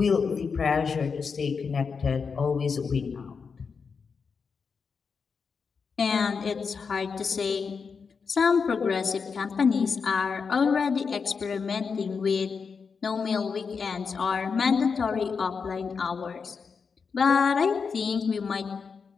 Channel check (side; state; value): right; quieter; 5.5 dB